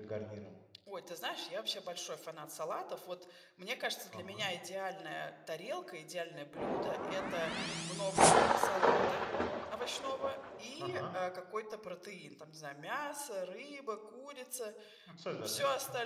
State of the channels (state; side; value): identical; both; correlation 1.00